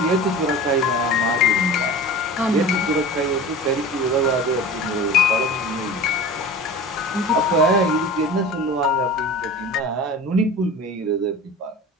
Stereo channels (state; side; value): normal; both; correlation 0.36